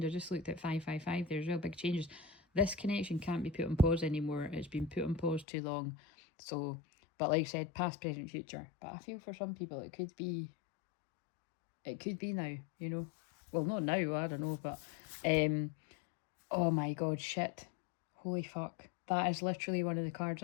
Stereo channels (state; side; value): drops out; right; at 5.5 s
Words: I just looked at 555. There's real big changes. This connection can't be put on pause anymore. It's been put on pause too long. So, but like I said, past, present, future. But I feel for some people it could be now, you know. Well, not now, I don't know, but oh my god, shit. Holy fuck. That is literally one of the cards